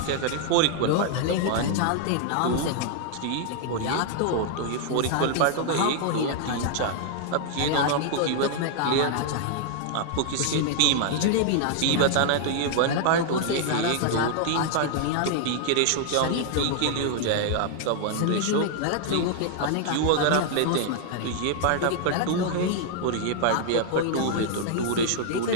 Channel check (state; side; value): different; both; correlation 0.00